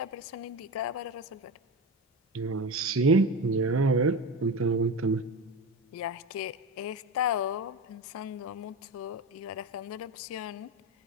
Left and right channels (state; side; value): normal; both; correlation 0.23